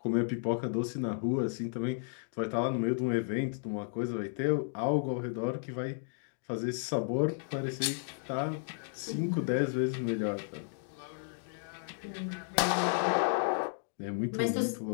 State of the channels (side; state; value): right; silent; digital silence